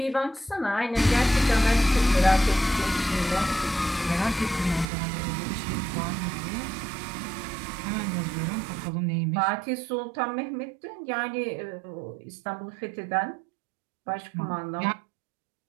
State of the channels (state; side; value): drops out; left; at 4.9 s